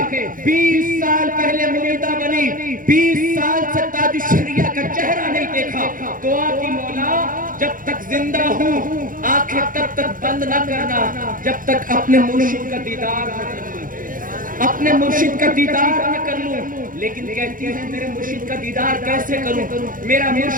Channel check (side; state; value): left; late; 0.40 ms